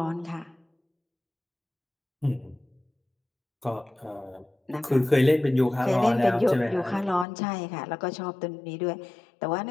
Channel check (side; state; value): right; drops out; at 7.2 s